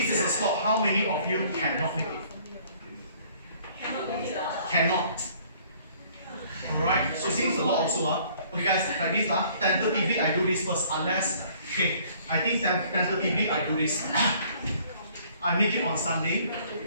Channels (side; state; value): both; inverted; correlation -0.58